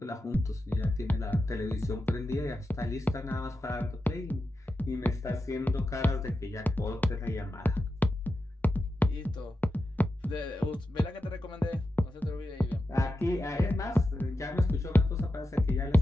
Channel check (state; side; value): normal; both; correlation 0.89